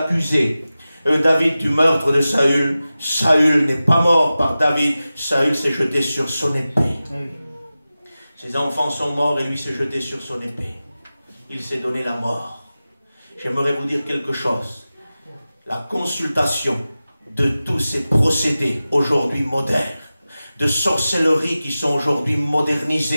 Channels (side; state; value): both; inverted; correlation -0.95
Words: David du meurtre de Saül. Saül n'est pas mort par David. Saül s'est jeté sur son épée. Ses enfants sont morts et lui s'est jeté sur son épée. Il s'est donné la mort. J'aimerais vous dire quelque chose. La consultation de tous ces procédés aujourd'hui modernes, de sorcellerie qui sont aujourd'hui